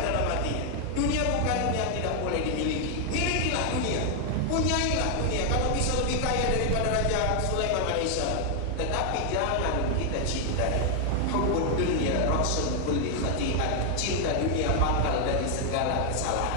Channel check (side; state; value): both; different; correlation 0.00